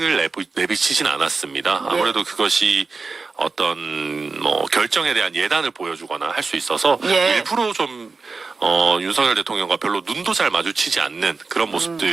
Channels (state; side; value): quieter; left; 4.2 dB